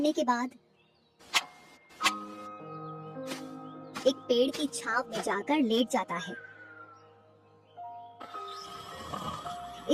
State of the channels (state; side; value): identical; both; correlation 1.00